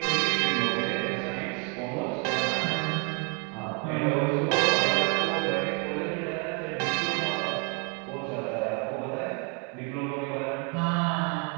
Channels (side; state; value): left; quieter; 34.2 dB